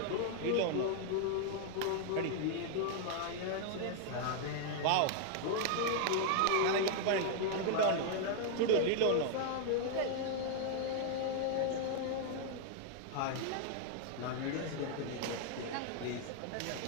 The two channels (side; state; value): both; different; correlation 0.00